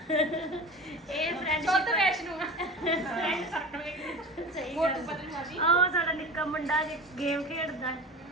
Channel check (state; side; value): normal; both; correlation 0.33